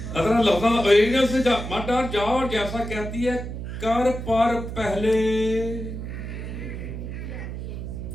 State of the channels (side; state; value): right; noise; hum, 7 dB below the sound